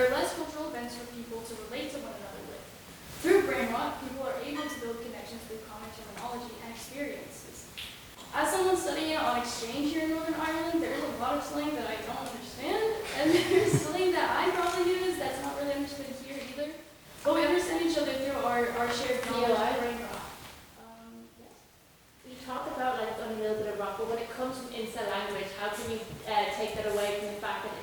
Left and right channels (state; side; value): identical; both; correlation 1.00